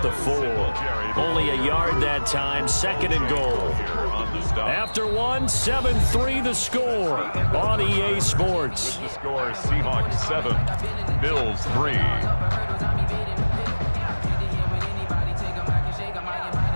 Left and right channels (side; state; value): both; inverted; correlation -1.00